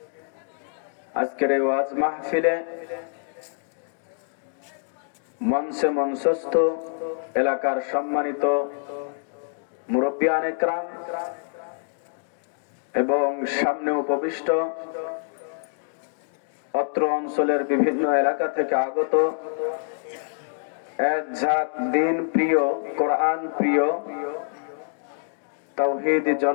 আজকের এই ওয়াজ মাহফিলে মঞ্চে মঞ্চস্থ এলাকার সম্মানিত মুরব্বিয়ান ইকরাম এবং সামনে উপবিষ্ট অত্র অঞ্চলের বিভিন্ন এলাকা থেকে আগত এক ঝাঁক দিন প্রিয়, কোরআন প্রিয় তাওহীদি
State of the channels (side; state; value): right; silent; digital silence